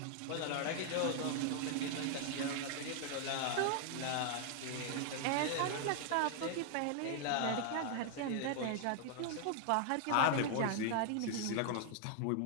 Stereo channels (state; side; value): different; both; correlation 0.00